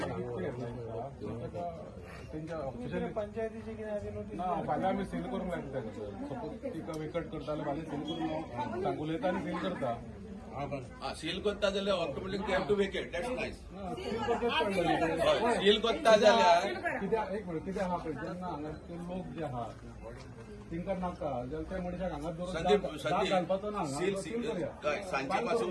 पंचायतीचे कितें आसा नोटीस फाल्यां आमी सील करूंक लागता सपोज तिका वेकट करता जाल्यार फाल्यां सील करून सांगून उलयता आनी सील करता सील करता जाल्यार automatic they have to vacate that's nice seal करता जाल्यार कित्याक एक मिनट कितें आहा पळय जेन्ना हांगा ते लोक जे आहा तिंका नाका जाल्यार त्या मनशाक हांगा संदीप दवरून घालपाचो ना सील सांजे पासून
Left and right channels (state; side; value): identical; both; correlation 1.00